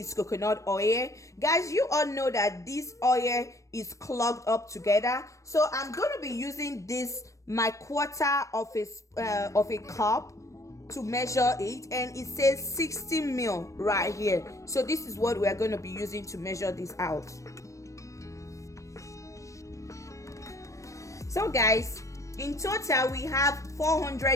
coconut oil. Guys, you all know that this oil is clogged up together, so I'm going to be using this my quarter of a cup to measure it, and it says 60 ml right here. So this is what we are going to be using to measure this out. So guys, in total we have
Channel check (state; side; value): late; right; 0.15 ms